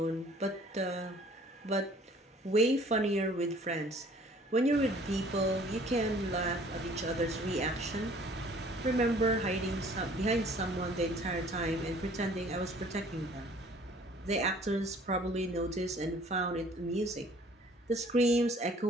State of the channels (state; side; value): normal; both; correlation 0.54